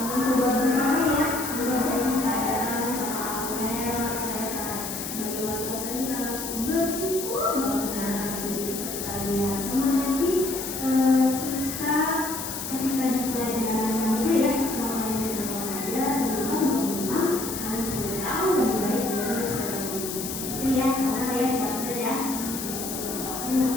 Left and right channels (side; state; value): left; noise; hiss, 6 dB below the sound